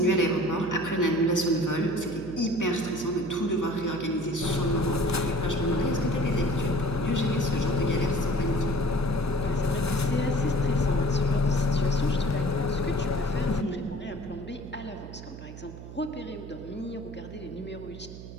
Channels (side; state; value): right; noise; hum, 13 dB below the sound